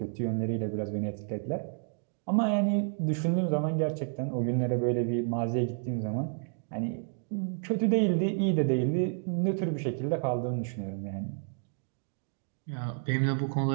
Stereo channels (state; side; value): silent; left; 57 dB below the other